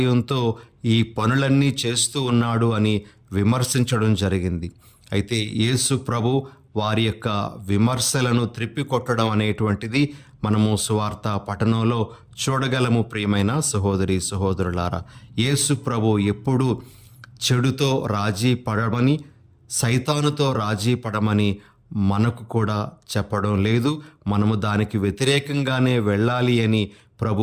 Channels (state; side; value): identical; both; correlation 1.00